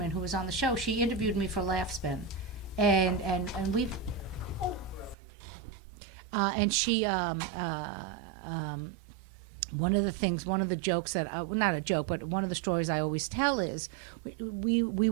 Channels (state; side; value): drops out; left; at 5.2 s